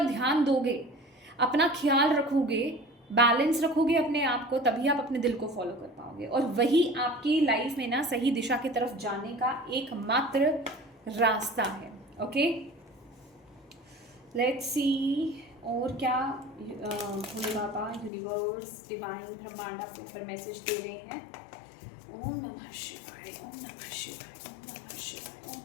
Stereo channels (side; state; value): right; drops out; at 18.1 s